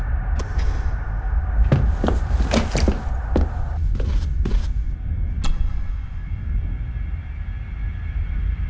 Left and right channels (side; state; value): both; identical; correlation 1.00